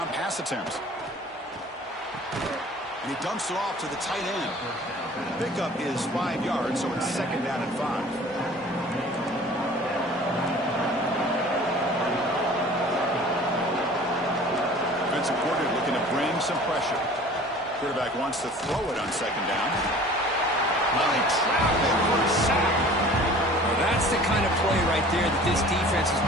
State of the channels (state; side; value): normal; both; correlation 0.46